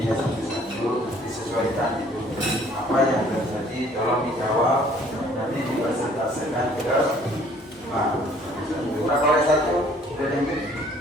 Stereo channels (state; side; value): normal; both; correlation 0.58